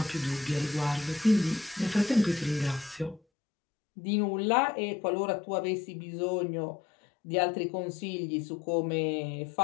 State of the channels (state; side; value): drops out; right; at 3.2 s